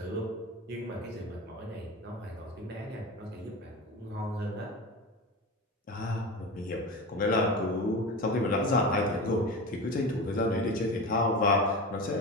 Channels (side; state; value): both; normal; correlation 0.27